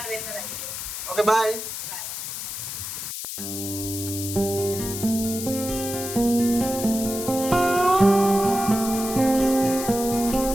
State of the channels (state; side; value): noise; left; hiss, 6 dB below the sound